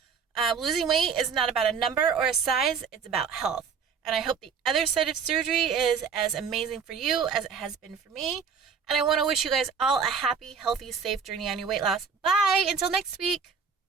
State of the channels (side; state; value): left; quieter; 6.1 dB